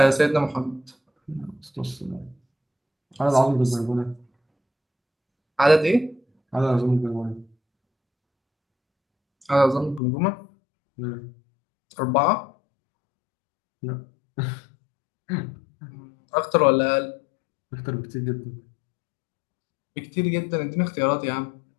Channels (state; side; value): drops out; right; at 10.0 s